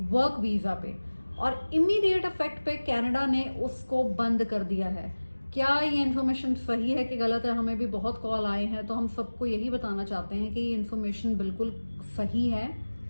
वर्क वीज़ा पे, और इमीडिएट इफेक्ट पे कनाडा ने उसको बंद कर दिया है। क्या ये इन्फॉर्मेशन सही है कि गलत है? हमें भी बहुत कॉल आए हैं, तो हम सबको यही बताना चाहते हैं कि ये इन्फॉर्मेशन बिल्कुल सही है।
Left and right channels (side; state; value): both; inverted; correlation -1.00